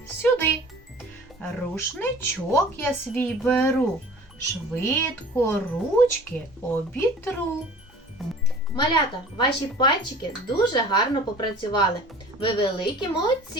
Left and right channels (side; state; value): both; normal; correlation 0.44